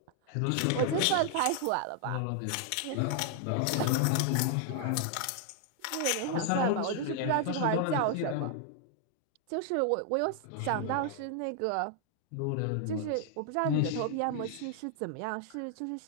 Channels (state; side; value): different; both; correlation 0.00